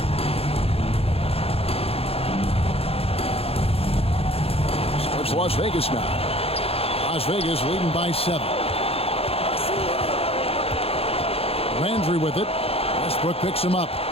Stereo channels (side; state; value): right; late; 0.28 ms